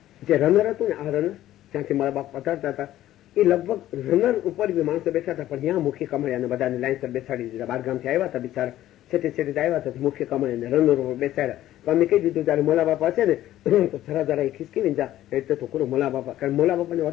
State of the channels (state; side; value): quieter; right; 13.6 dB